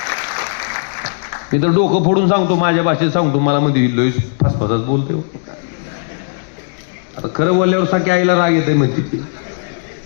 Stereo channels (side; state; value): right; silent; digital silence